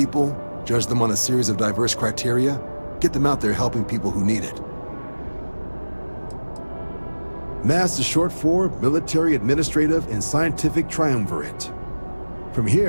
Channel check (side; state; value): both; inverted; correlation -1.00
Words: judge them on a series of diverse criteria, get them out there helping people who need it. MAST is short for Military, Administrative, and Scientific Triumvirate. From